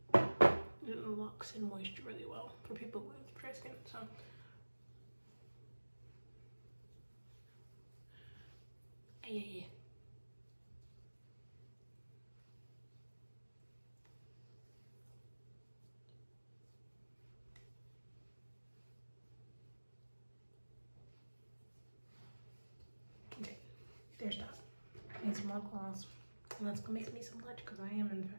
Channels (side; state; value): both; inverted; correlation -1.00